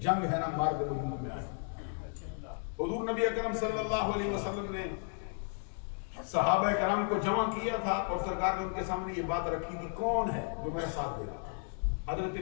ہے نا مارد وجود میں آئی. حضور نبی اکرم صلی اللہ علیہ وسلم نے صحابہ کرام کو جمع کیا تھا اور سرکار نے ان کے سامنے یہ بات رکھی تھی، کون ہے جو میرا ساتھ دے گا؟ حضرت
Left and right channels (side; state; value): right; silent; 55 dB below the other